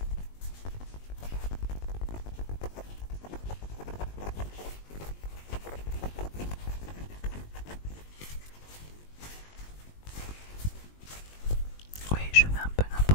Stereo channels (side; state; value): right; late; 20 ms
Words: Oui, je fais un peu